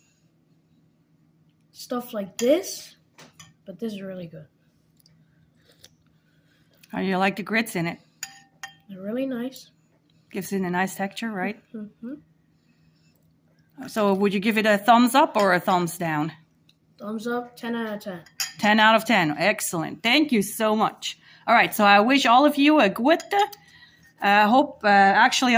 stuff like this, but this is really good. How do you like the grits in it? They're really nice. Gives it a nice texture, right? Mm-hmm. So would you give it a thumbs up or a thumbs down? Thumbs up, 10 out of 10. 10 out of 10. Excellent. Thank you so much. All right, so I wish all of you a gute. I hope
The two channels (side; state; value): both; identical; correlation 1.00